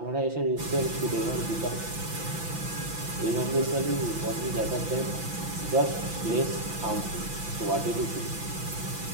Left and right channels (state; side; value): late; left; 5.9 ms